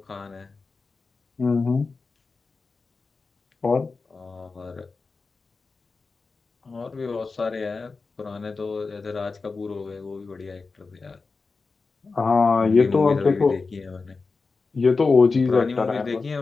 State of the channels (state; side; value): quieter; right; 4.2 dB